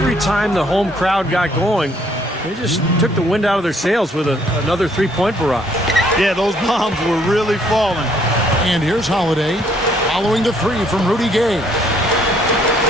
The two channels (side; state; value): both; normal; correlation 0.65